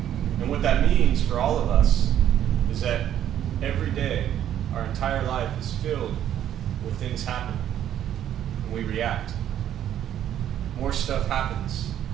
And what that means for all of us is that every day, our entire life is filled with things happening, and we react. More stuff happens,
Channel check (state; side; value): quieter; left; 10.8 dB